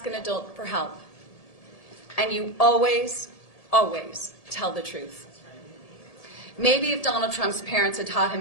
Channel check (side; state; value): right; late; 1.7 ms